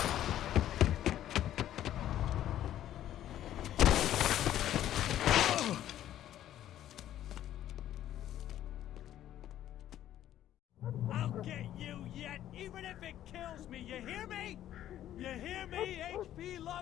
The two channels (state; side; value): quieter; right; 12.1 dB